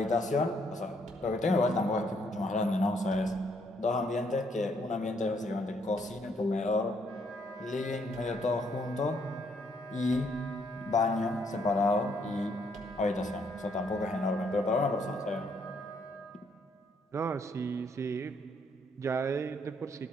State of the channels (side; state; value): both; normal; correlation 0.70